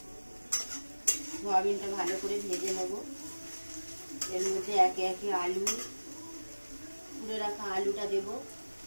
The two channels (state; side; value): inverted; both; correlation -1.00